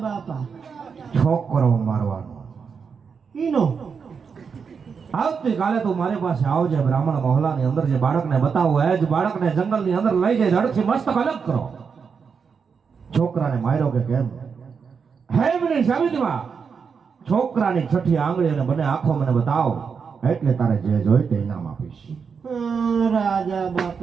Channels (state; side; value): quieter; left; 6.0 dB